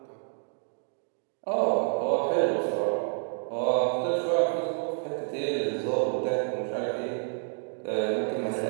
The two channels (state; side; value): silent; left; 59 dB below the other